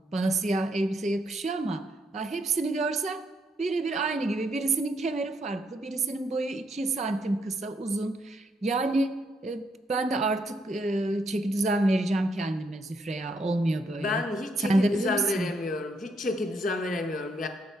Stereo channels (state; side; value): normal; both; correlation 0.75